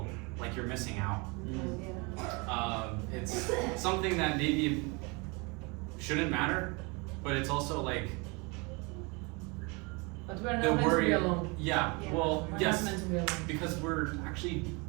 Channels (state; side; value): quieter; left; 29.0 dB